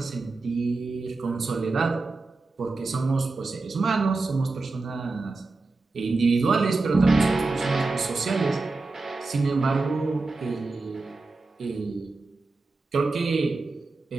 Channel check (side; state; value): left; quieter; 3.6 dB